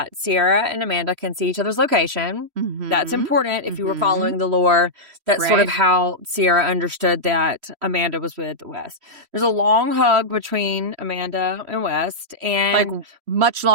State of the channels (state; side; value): late; left; 3.1 ms